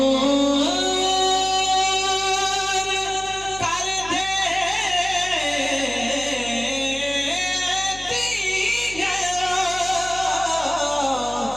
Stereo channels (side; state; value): left; noise; hum, 17 dB below the sound